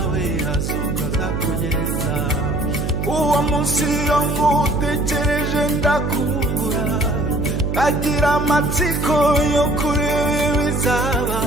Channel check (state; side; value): noise; right; hum, 2 dB below the sound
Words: ukaza kugenza. Uwo munsi iyo ngutekereje ndakumbura, kagira amatsiko yo kureba